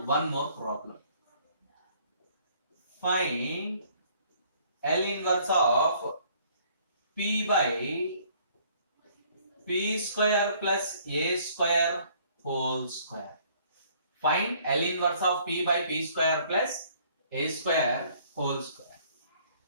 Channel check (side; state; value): both; inverted; correlation -0.60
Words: one more problem. Find L inverse of p by p square plus a square whole square. Find L inverse of p by p square plus a square whole square.